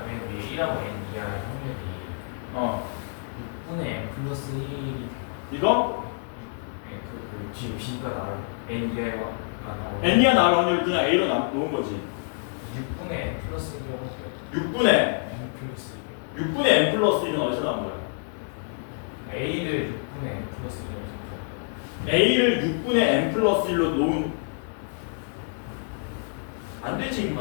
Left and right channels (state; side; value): silent; right; 60 dB below the other